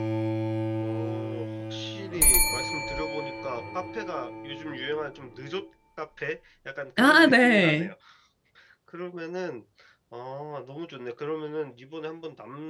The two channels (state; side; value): identical; both; correlation 1.00